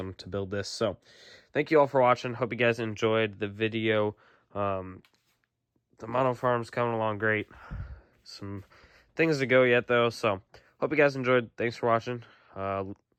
to build this. So thank you all for watching. Hope you guys enjoyed the video. The model farm's coming along great. Some things to go yet though, so hope you guys enjoyed. Thanks for watching.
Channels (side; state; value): both; identical; correlation 1.00